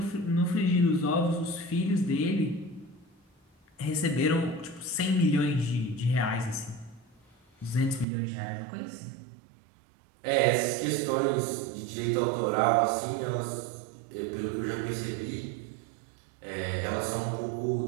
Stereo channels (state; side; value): drops out; left; at 8.1 s